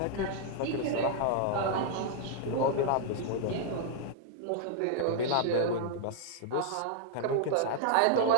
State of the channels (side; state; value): both; different; correlation -0.01